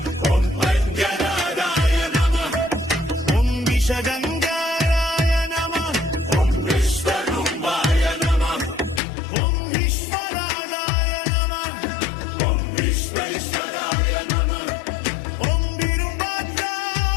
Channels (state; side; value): drops out; right; at 9.0 s